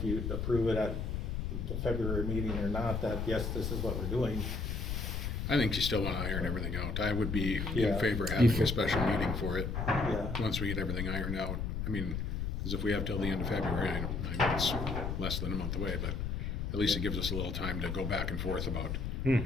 you approve it at the February meeting or not, that yes, this is what we're doing. I think you still wanna iron everything out. I would be in Yeah. favor of having a special meeting for it, Yeah, once we get everything ironed out. I mean, cause if we have till the end of February, I know it's less than a month away, but at least it gives us a little time to go back and forth about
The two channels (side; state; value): left; noise; rumble, 2 dB below the sound